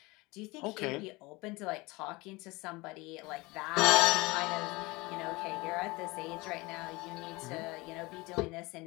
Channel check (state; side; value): quieter; right; 23.4 dB